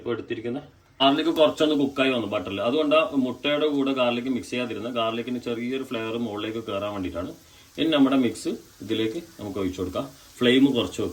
എടുത്തിരിക്കുന്ന ഗാർലിക് കുറച്ചൊന്ന് കുക്കായി വന്നു ബട്ടറിൽ. അതുകൊണ്ടാണ് മുട്ടയുടെ കൂടെ ഗാർലിക് മിക്സ് ചെയ്യാതിരുന്നത്. ഗാർലിക്കിന് ചെറിയൊരു ഫ്ലേവർ മുകളിലേക്ക് കയറാൻ വേണ്ടിയിട്ടാണ്. ഇനി നമ്മുടെ മിക്സ് ഇതിലേക്ക് നമുക്ക് ഒഴിച്ചു കൊടുക്കാം. ഫ്ലെയിം കുറച്ച്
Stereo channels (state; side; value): identical; both; correlation 1.00